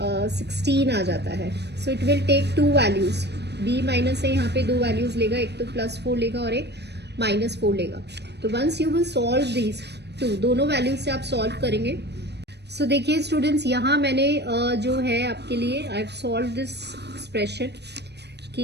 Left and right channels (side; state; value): left; late; 0.49 ms